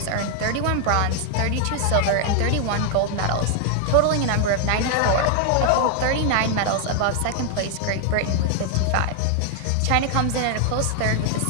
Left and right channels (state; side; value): different; both; correlation 0.00